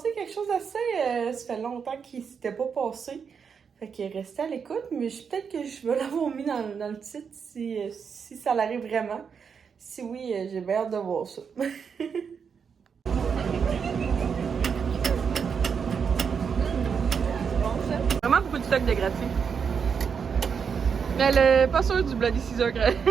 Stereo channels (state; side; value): quieter; left; 6.5 dB